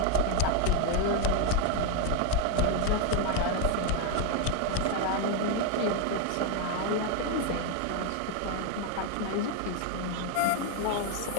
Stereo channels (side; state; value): both; different; correlation 0.01